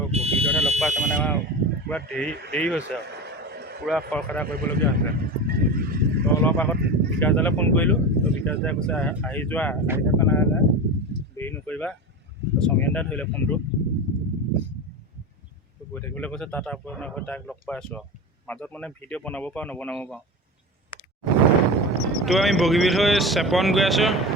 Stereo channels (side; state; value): both; normal; correlation 0.26